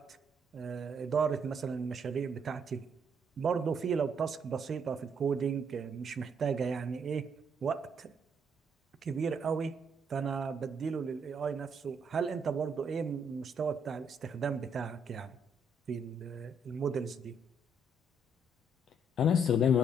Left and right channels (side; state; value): both; normal; correlation 0.71